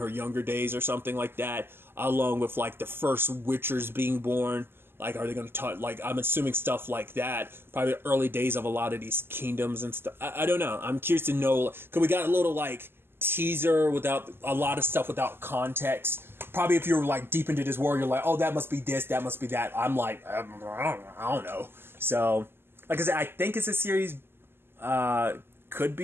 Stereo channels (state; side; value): late; left; 0.11 ms